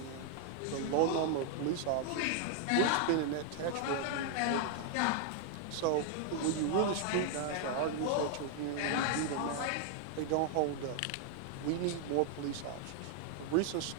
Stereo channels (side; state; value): both; different; correlation 0.00